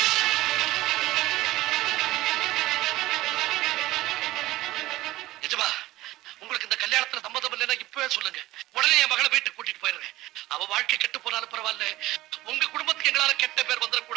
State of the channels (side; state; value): left; quieter; 17.2 dB